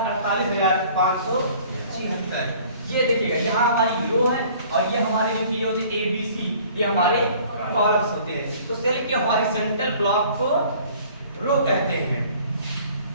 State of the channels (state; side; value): inverted; both; correlation -0.52